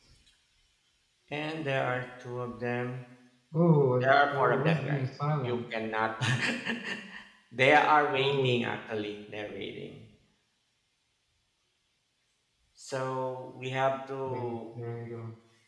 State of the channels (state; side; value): identical; both; correlation 1.00